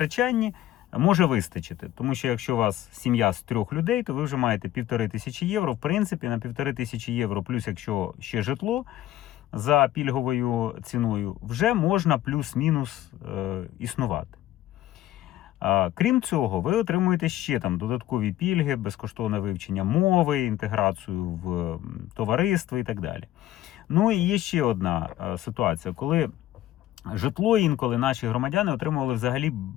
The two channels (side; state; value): right; quieter; 13.9 dB